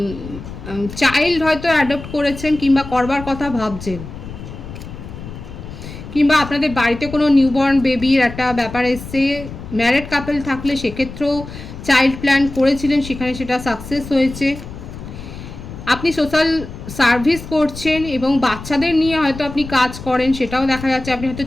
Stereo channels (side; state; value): left; noise; rumble, 12 dB below the sound